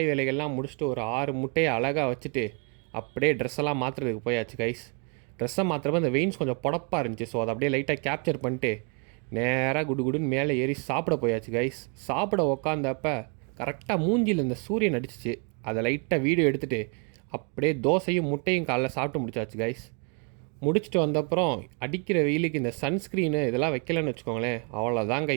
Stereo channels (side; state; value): left; quieter; 36.1 dB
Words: வேலைகள்லாம் முடிச்சுட்டு ஒரு 6 முட்டையை அழகாக வச்சுட்டு அப்படியே ட்ரெஸ்ஸெல்லாம் மாற்றுறதுக்கு போயாச்சு கைஸ். ட்ரெஸ்ஸை மாற்றுறப்ப அந்த வெயின்ஸ் கொஞ்சம் புடப்பாக இருந்துச்சு. ஸோ அதை அப்படியே லைட்டாக கேப்சர் பண்ணிட்டு நேராக குடுன்னு மேலே ஏறி சாப்பிட போயாச்சு கைஸ். சாப்பிட உக்காந்தப்ப கரெக்டாக மூஞ்சியில் இந்த சூரியன் அடிச்சிச்சு. அதை லைட்டாக வீடியோ எடுத்துகிட்டு அப்படியே தோசையும் முட்டையும் காலைல சாப்பிட்டு முடிச்சாச்சு கைஸ். முடிச்சுட்டு வந்தப்புறம் அடிக்கிற வெயிலுக்கு இந்த சன்ஸ்க்ரீனு இதெல்லாம் வைக்கலன்னு வச்சுக்கோங்களேன், அவ்வளோதான்